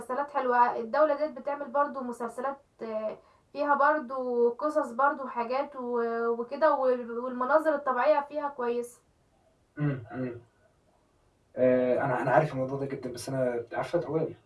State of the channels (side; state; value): both; identical; correlation 1.00